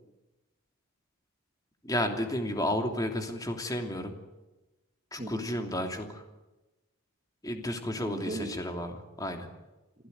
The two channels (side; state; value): both; normal; correlation 0.53